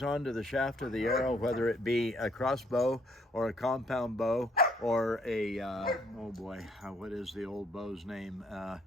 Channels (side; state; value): both; normal; correlation 0.66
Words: onto the shaft of the arrow, whether it be a crossbow or a compound bow or a, oh boy, what is the old bow's name?